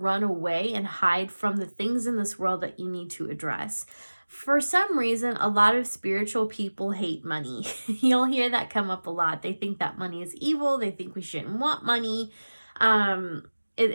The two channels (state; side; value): inverted; both; correlation -1.00